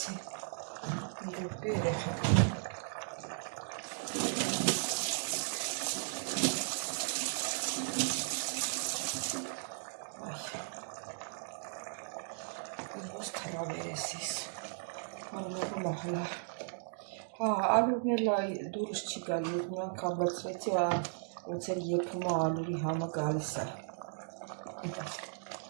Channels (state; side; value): silent; left; digital silence